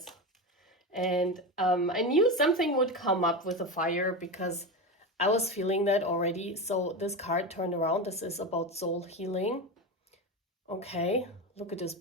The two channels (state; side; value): normal; both; correlation 0.19